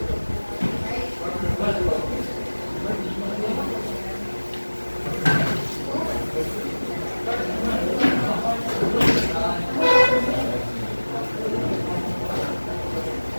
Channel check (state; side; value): inverted; both; correlation -1.00